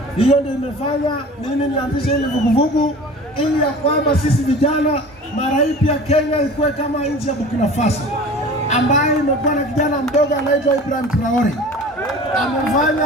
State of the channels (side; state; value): both; normal; correlation 0.40